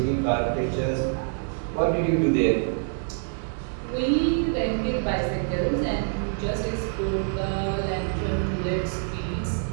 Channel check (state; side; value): silent; left; digital silence